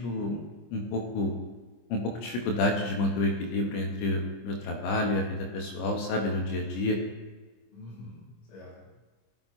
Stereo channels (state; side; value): late; right; 25 ms